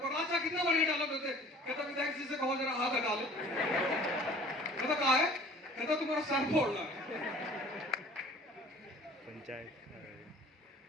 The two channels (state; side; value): normal; both; correlation 0.48